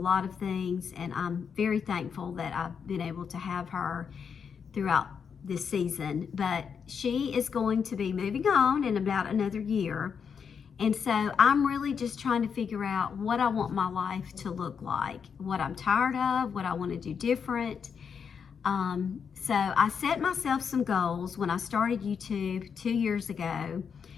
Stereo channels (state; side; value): quieter; right; 6.7 dB